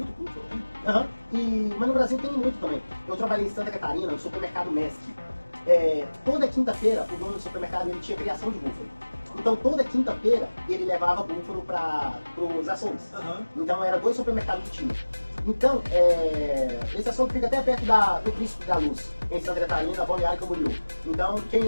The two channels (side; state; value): both; inverted; correlation -1.00